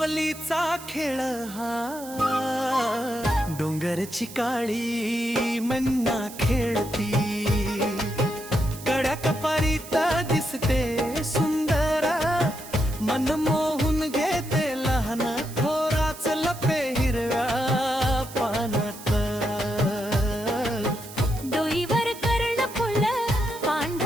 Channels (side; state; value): right; noise; hiss, 15 dB below the sound